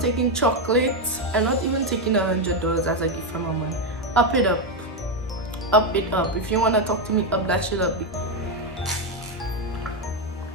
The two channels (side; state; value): both; normal; correlation 0.06